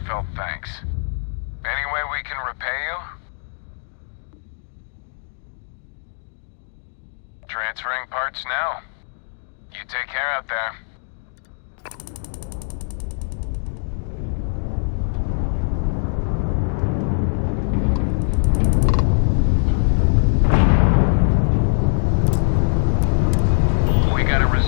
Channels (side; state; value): right; silent; digital silence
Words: thanks. Any way we can repay you? Transferring parts now. You take care out there. We gotta